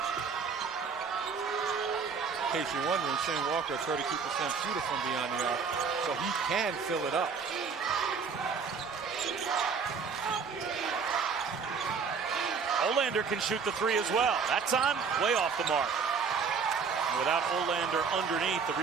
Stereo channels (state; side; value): quieter; left; 5.7 dB